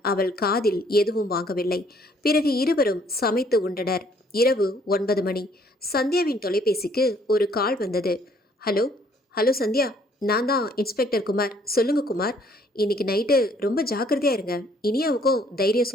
அவள் காதில் எதுவும் வாங்கவில்லை. பிறகு இருவரும் சமைத்து உண்டனர். இரவு 9 மணி. சந்தியாவின் தொலைபேசிக்கு ஒரு கால் வந்தது. ஹலோ ஹலோ சந்தியா, நான் தான் இன்ஸ்பெக்டர் குமார். சொல்லுங்க குமார், இன்னைக்கு நைட்டு ரொம்ப ஜாக்கிரதையா இருங்க. இனியாவுக்கும் தைரியம்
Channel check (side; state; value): both; normal; correlation 0.62